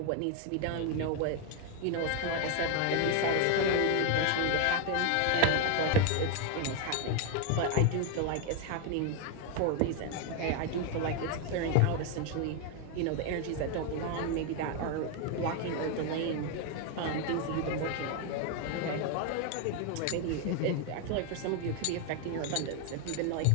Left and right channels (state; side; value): different; both; correlation 0.01